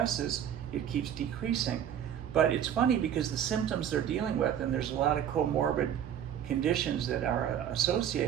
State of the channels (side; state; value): left; quieter; 9.7 dB